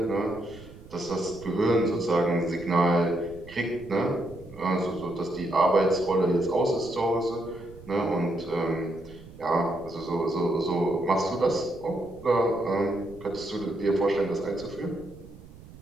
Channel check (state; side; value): noise; right; rumble, 19 dB below the sound